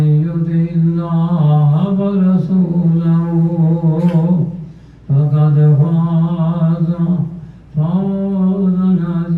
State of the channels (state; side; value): identical; both; correlation 1.00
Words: يطع الله ورسوله فقد فاز فوزا